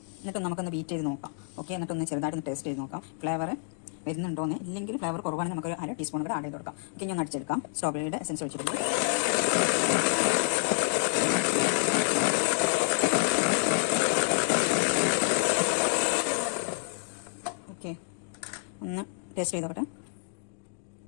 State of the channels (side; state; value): right; silent; digital silence